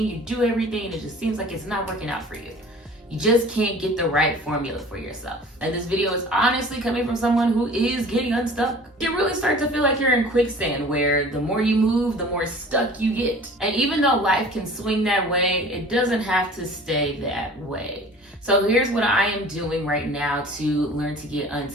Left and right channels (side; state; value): both; normal; correlation 0.45